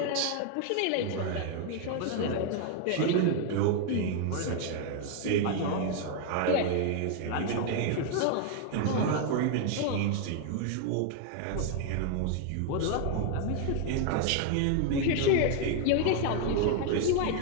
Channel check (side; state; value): both; different; correlation 0.00